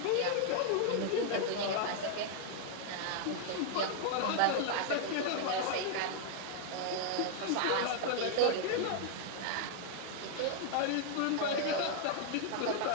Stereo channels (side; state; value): both; different; correlation 0.00